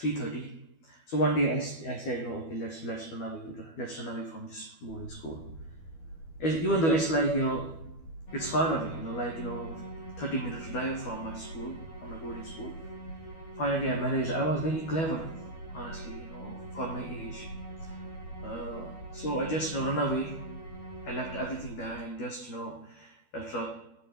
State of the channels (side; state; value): right; late; 12 ms